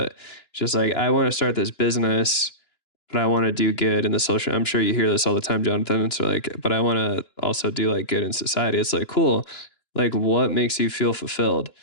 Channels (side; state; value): right; late; 2.9 ms